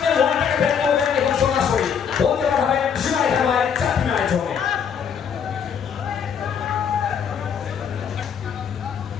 ওয়ানটাকে ব্যাট করবেন এবং সরাসরি বলতে পারবেন সীমায় খেলায় 4 রানের জন্য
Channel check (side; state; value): right; quieter; 7.4 dB